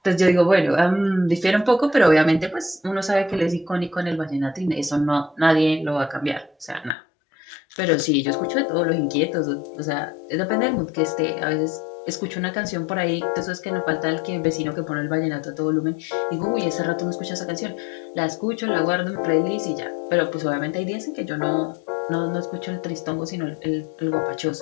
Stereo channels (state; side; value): drops out; right; at 7.0 s